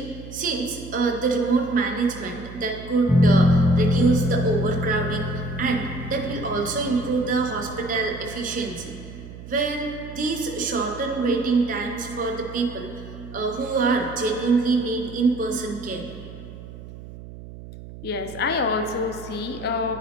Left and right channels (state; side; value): noise; right; hum, 14 dB below the sound